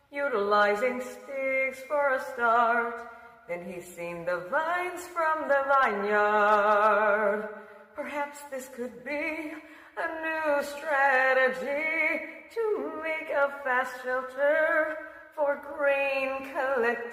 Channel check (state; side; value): identical; both; correlation 1.00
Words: utilizing sticks for a start. Then he seen the vines from the vineyard. Perhaps this could be a new strategy to make a fast shelter for grain